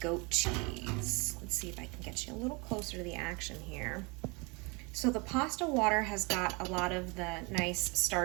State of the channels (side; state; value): left; quieter; 28.7 dB